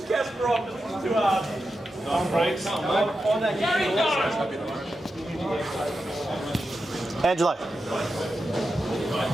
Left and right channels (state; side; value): normal; both; correlation 0.89